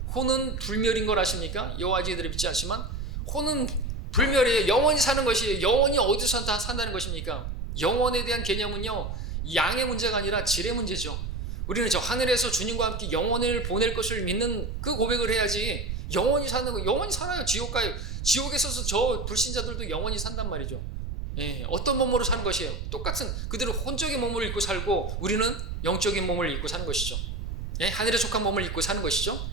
혼은 불멸인 걸 아십니까? 여호와지들이 믿지 않지만 혼은 불멸이에요. 영원히 사는 것이에요. 영원히 어디서 산다는 것입니까? 영원에 대한 개념은요. 양의 문제가 아니라 질의 문제죠. 우리는 저 하늘에서 주님과 함께 영혼을 보낼 것을 믿는 그 고백을 해야지 영원히 사는 거, 영원히 살아요. 지옥 가요. 지옥에서 저 불신자들도 영원히 산단 말이죠. 어떤 몸으로 사는 것이에요? 똑같은 그대로 혼적인 몸을 입고 살고 우리는 영적인 몸을 입고 사는 것이죠. 하늘에 속한 몸을 입고 사는 것이죠.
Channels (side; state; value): right; noise; rumble, 5 dB below the sound